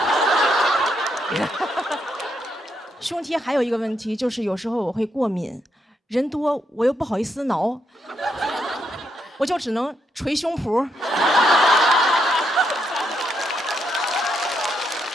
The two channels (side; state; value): both; normal; correlation 0.79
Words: ”胸贴还有一个问题，就是有时候我会过敏。人多我又不好意思挠，我就只能捶胸脯。